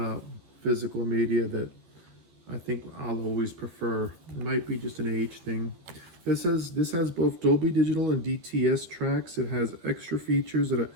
physical media that I think I'll always prefer. It might be just an age thing. This has both Dolby Digital and DTS tracks. It has extra features that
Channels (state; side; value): late; left; 13 ms